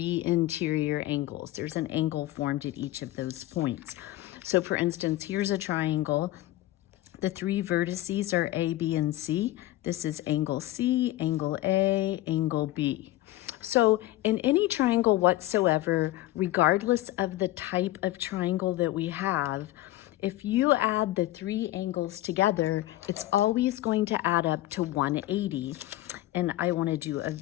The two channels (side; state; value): right; quieter; 16.0 dB